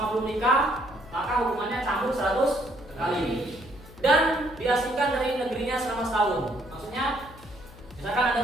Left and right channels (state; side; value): noise; left; hum, 20 dB below the sound